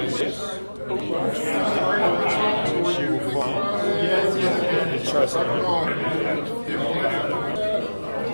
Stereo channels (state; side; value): inverted; both; correlation -1.00